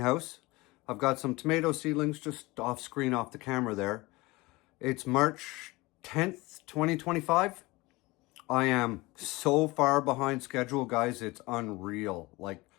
I've got some tomato seedlings just off screen off the camera there. It's March 10th, 2025. I am so far behind schedule, guys. It's unreal. Like,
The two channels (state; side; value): quieter; right; 22.1 dB